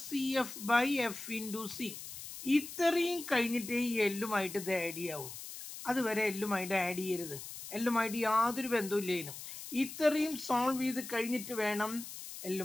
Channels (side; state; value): left; noise; hiss, 11 dB below the sound